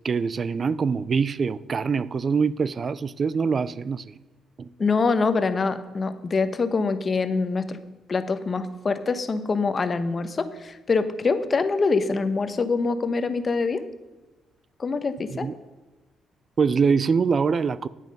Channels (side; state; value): both; normal; correlation 0.83